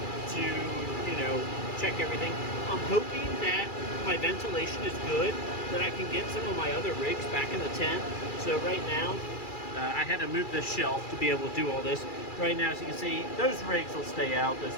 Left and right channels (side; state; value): right; late; 2.4 ms